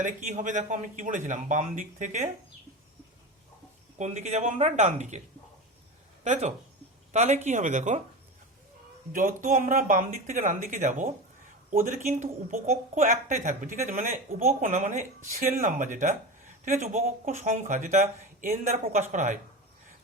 কি হবে দেখো, আমি কি বলেছিলাম, বাম দিক থেকে কোন দিকে যাব আমরা, ডান দিকে, তাই তো। তাহলে কি হবে দেখো, যত আমরা বাম দিক থেকে ডান দিকে যাব, ওদের কিন্তু উপকক্ষ একটাই থাকবে। ঠিক আছে, মানে উপকক্ষ না, মানে সেল নাম্বার যেটা, ঠিক আছে, উপকক্ষ সংখ্যা যেটা এন দ্বারা প্রকাশ করা হয়,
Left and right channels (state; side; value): normal; both; correlation 0.25